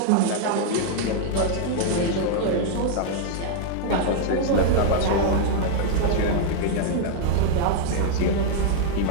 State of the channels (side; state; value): both; different; correlation 0.00